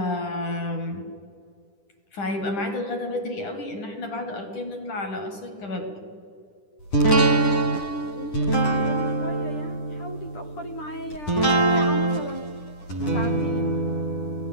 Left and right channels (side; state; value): right; late; 10 ms